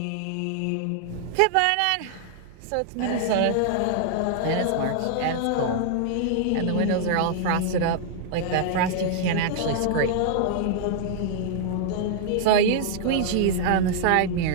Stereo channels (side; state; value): both; different; correlation -0.01